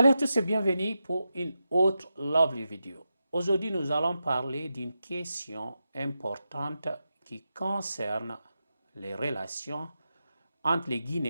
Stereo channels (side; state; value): both; inverted; correlation -0.89